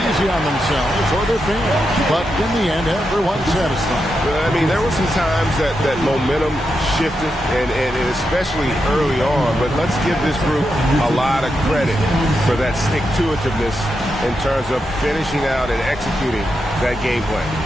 on themselves or their fans. But in the end, everyone's satisfied. I mean, there were some times that momentum shifted, and especially early on. But let's give this group a lot of credit for that stick-to-itiveness in terms of finishing out and executing that game plan.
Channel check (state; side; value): normal; both; correlation 0.86